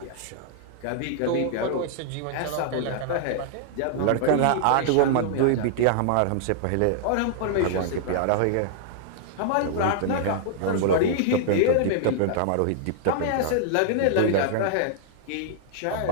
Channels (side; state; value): both; different; correlation -0.01